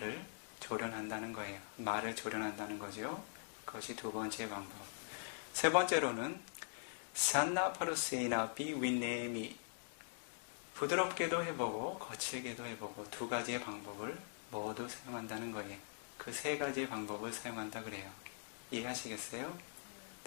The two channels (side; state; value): right; silent; digital silence